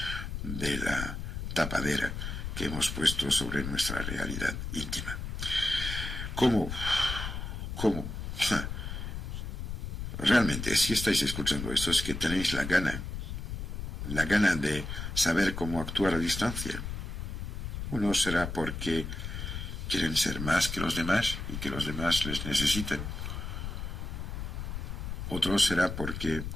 de la tapadera que hemos puesto sobre nuestra realidad íntima. ¿Cómo? Realmente, si estáis escuchando esto, es que tenéis la gana la gana de saber cómo actuar a distancia. Uno será porque quieren ser más que los demás y que los demás les necesiten. Otro será porque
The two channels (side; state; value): left; noise; rumble, 5 dB below the sound